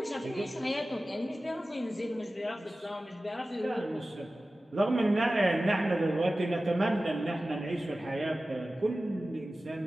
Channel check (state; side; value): normal; both; correlation 0.96